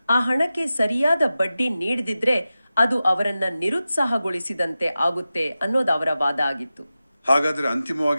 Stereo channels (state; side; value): inverted; both; correlation -0.94